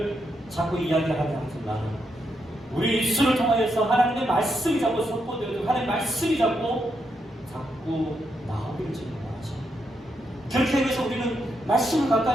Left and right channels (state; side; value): normal; both; correlation 0.81